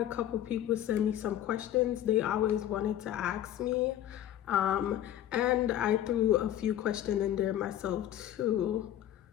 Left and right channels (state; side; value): quieter; right; 11.7 dB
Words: couple people send me some questions they always wanted to ask me. And I threw a few questions in there myself too